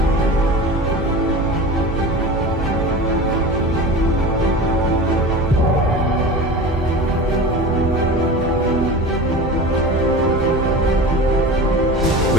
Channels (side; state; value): both; normal; correlation 0.32